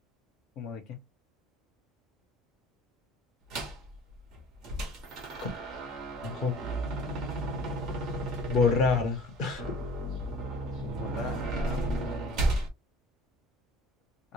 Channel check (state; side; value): normal; both; correlation 0.48